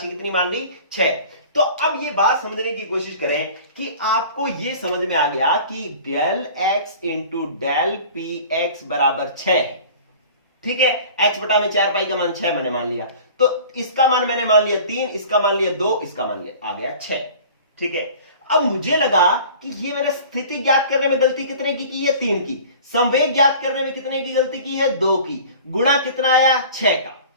कितनी मान ली, 6। तो अब ये बात समझने की कोशिश करें कि आपको ये समझ में आ गया कि del x into del p x बराबर 6 है। ठीक है, h/4 पाई का मान 6 मैंने मान लिया, तो इसका मान मैंने मान लिया 3, इसका मान लिया 2, इसका मान लिया आ गया 6। ठीक है, अब मुझे लगा कि ये मैंने स्थिति ज्ञात करने में गलती कितने की है, 3 की। संवेग ज्ञात करने में कितने की गलती की है, 2 की। गुणा कितना आया, 6 का।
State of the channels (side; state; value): both; inverted; correlation -0.43